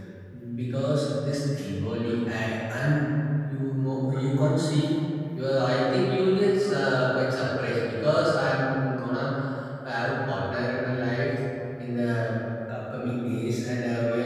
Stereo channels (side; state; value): both; identical; correlation 1.00